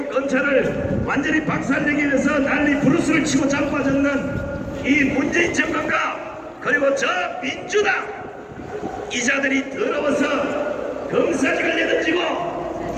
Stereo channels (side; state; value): both; identical; correlation 1.00